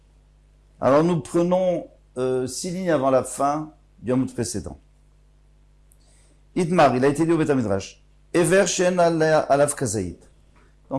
Alors nous prenons 6 lignes avant la fin du Amud précédent. Idmar, il a été dit au Beth Midrash. Ever Shen Alav Kazaït.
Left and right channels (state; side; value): identical; both; correlation 1.00